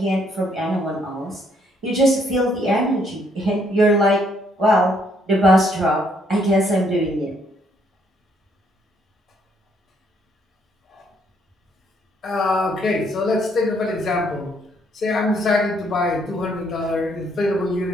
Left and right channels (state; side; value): normal; both; correlation 0.69